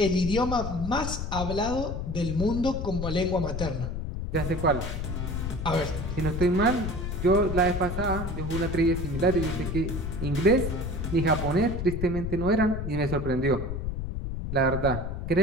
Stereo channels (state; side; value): noise; left; rumble, 4 dB below the sound